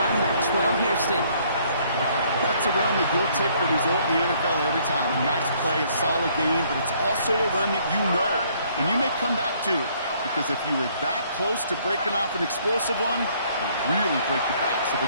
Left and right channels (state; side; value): inverted; both; correlation -0.64